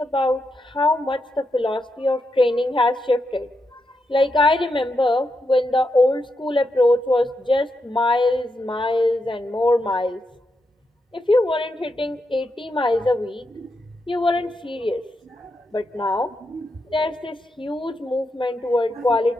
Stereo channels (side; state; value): both; normal; correlation 0.84